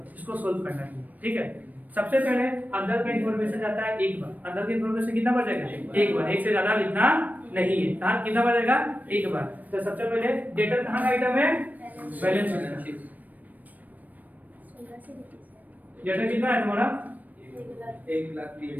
इसको सोल्व करना है, ठीक है। सबसे पहले अंदर का इंफॉर्मेशन जाता है एक बार, अंदर का इंफॉर्मेशन कितना बार जाएगा, एक बार, एक से ज्यादा लिखना नहीं है। कहां कितना बार जाएगा, एक बार। तो सबसे पहले डेटर कहां का आइटम है, बैलेंस शीट। डेटर कितना है तुम्हारा,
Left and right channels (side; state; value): left; late; 0.081 ms